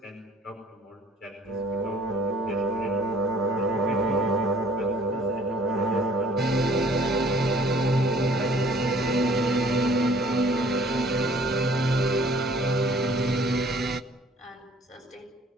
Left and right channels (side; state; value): both; normal; correlation 0.56